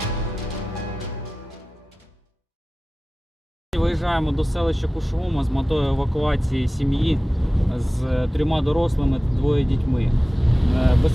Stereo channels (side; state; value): both; normal; correlation 0.97